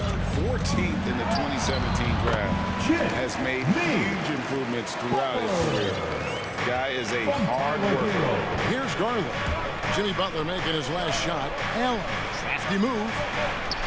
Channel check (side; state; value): both; identical; correlation 1.00